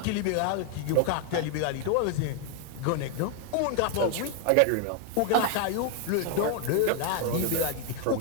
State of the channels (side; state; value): both; different; correlation 0.00